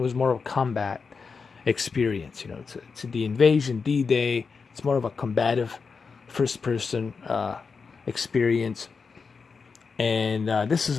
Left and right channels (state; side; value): quieter; right; 5.1 dB